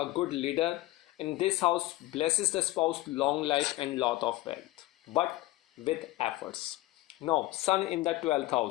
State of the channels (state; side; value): quieter; right; 18.0 dB